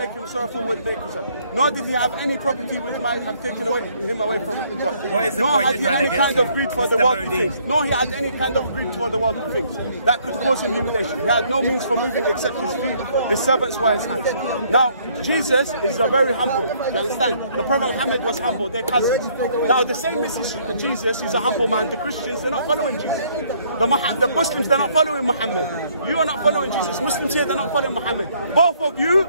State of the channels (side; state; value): both; inverted; correlation -0.65